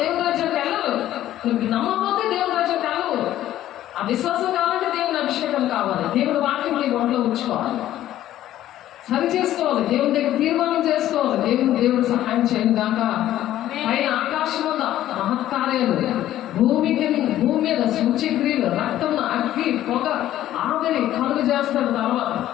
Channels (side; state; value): right; quieter; 13.1 dB